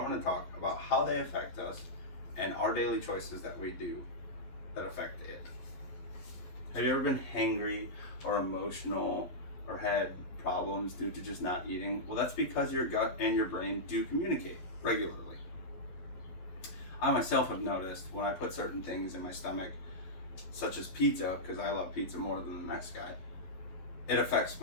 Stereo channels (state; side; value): late; right; 11 ms